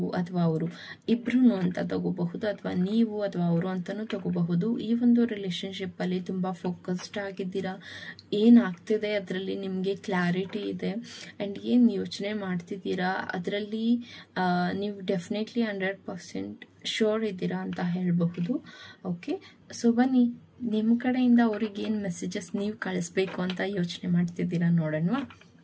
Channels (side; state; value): both; identical; correlation 1.00